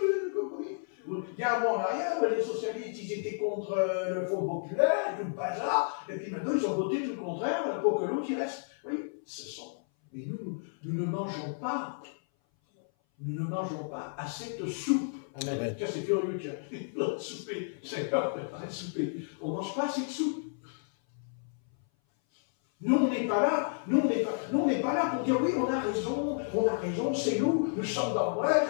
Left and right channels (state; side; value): silent; right; 57 dB below the other